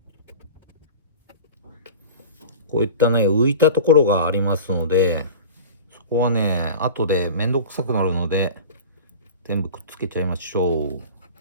こういったね、浮いたところがありますので、そこはね、後でめんどくさくなるので、全部くっつけちゃいましょう。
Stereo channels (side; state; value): both; inverted; correlation -0.36